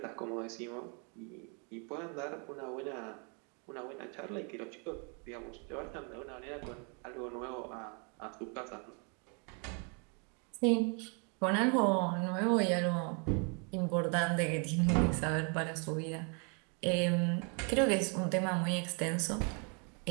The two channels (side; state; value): left; quieter; 36.6 dB